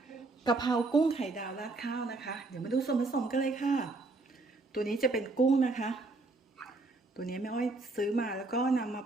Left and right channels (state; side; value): quieter; left; 3.3 dB